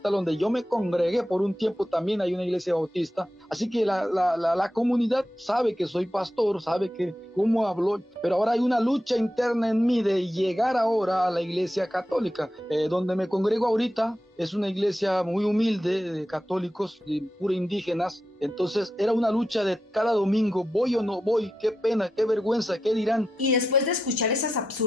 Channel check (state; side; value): normal; both; correlation 0.89